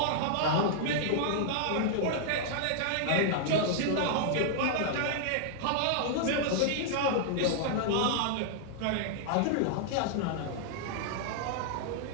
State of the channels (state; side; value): different; both; correlation -0.01